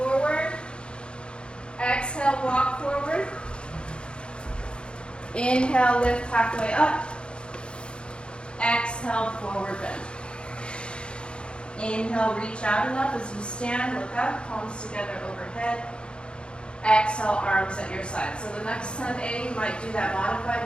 Exhale, walk forward. Inhale, lift halfway up. Exhale, forward bend. Inhale, reach out and up as you stand, look up, palms together overhead. Exhale, arms at your side. So the next Sun A, you might do that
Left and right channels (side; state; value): right; late; 0.054 ms